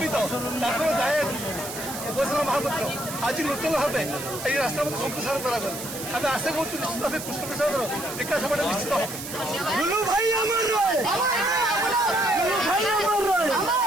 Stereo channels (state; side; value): noise; right; hiss, 9 dB below the sound